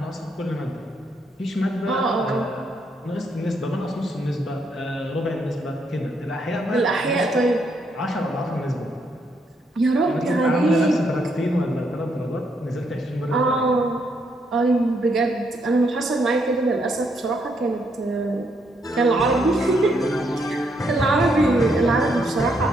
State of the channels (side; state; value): both; normal; correlation 0.75